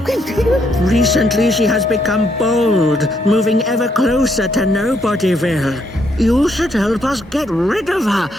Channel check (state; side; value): normal; both; correlation 0.74